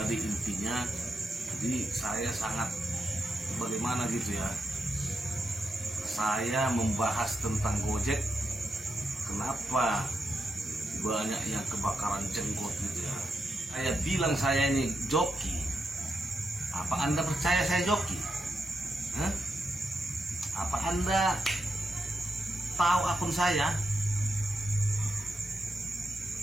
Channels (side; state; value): both; normal; correlation 0.85